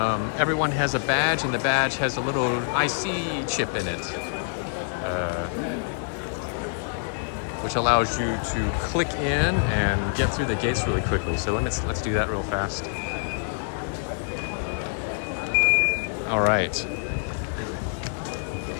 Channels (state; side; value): silent; right; digital silence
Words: Everyone has a badge, and the badge has a little IC chip in it, which allows you to click in and get through the gates really quickly. So let's do that real fast. All right.